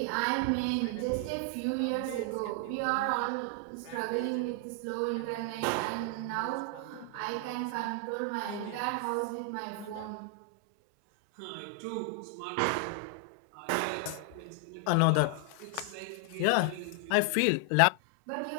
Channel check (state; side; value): different; both; correlation 0.00